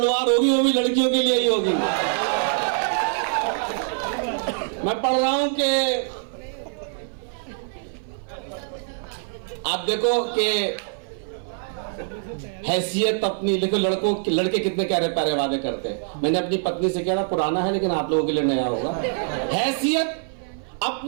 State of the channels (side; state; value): left; silent; 57 dB below the other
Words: वॉर होगी वो भी लड़कियों के लिए ही होगी। मैं पढ़ रहा हूं कि आप देखो कि हैसियत अपनी, देखो लड़के कितने प्यारे प्यारे वादे करते हैं। मैंने अपनी पत्नी से कहा, पुराना है लेकिन आप लोगों के लिए नया होगा। हैसियत